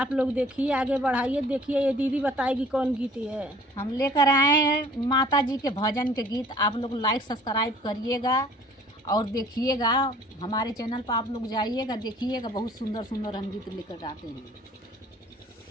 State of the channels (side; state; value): both; normal; correlation 0.52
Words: लोग देखिए, आगे बढ़ाइए। देखिए ये दीदी बताएगी कौन गीत है। हम लेकर आए हैं माता जी के भजन के गीत। आप लोग लाइक सब्सक्राइब करिएगा और देखिएगा। हमारे चैनल पर आप लोग जाइएगा, देखिएगा। बहुत सुंदर सुंदर हम गीत लेकर आते हैं।